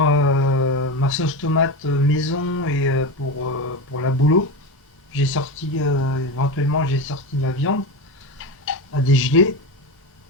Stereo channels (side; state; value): both; normal; correlation 0.19